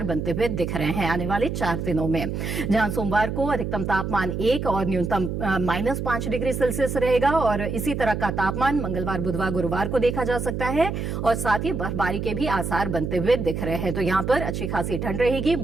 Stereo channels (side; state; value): right; noise; hum, 3 dB below the sound